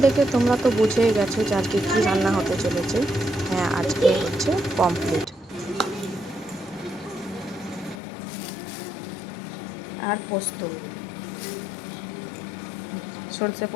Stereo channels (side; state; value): right; drops out; at 8.0 s